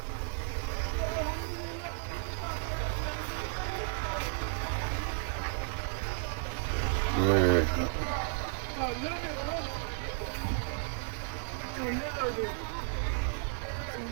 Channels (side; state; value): left; silent; digital silence